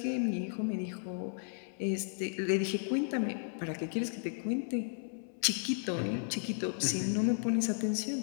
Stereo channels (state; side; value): silent; right; 55 dB below the other